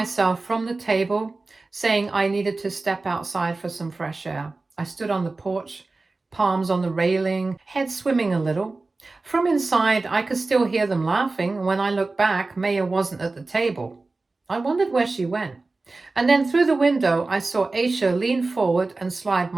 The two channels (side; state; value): left; quieter; 3.5 dB